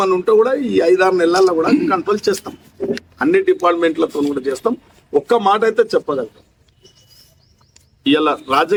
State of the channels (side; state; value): both; identical; correlation 1.00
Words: ఉంటే కూడా ఈ 5-6 నెలల్లో కూడా కంట్రోల్ చేస్తాం. అన్ని డిపార్ట్మెంట్లతో కూడా చేస్తాం. ఒక్క మాట అయితే చెప్పగలుగుతాం, ఇలా